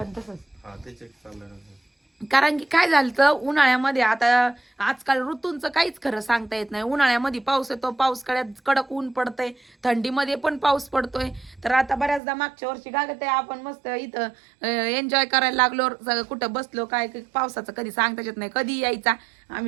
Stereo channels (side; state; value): left; drops out; at 12.2 s